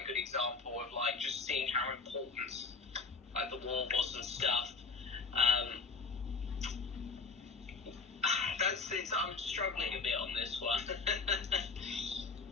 a good example of like just seeing how important like the war was and stuff. I'm struggling a bit on this one.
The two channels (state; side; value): quieter; right; 4.4 dB